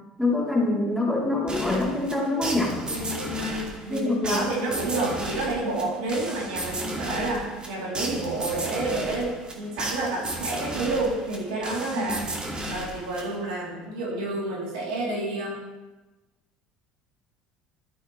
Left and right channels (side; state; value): both; normal; correlation 0.42